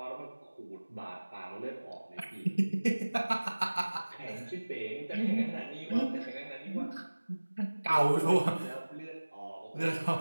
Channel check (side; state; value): both; inverted; correlation -1.00